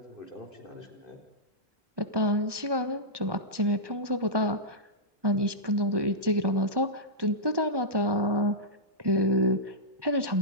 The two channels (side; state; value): left; late; 1.2 ms